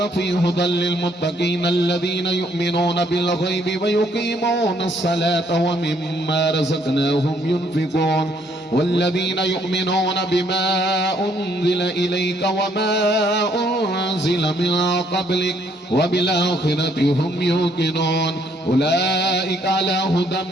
فيه هدى للمتقين الذين يؤمنون بالغيب ويقيمون الصلاة ومما رزقناهم ينفقون والذين يؤمنون بما أنزل إليك وما أنزل من قبلك وبالآخرة هم يوقنون أولئك على هدى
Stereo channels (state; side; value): normal; both; correlation 0.67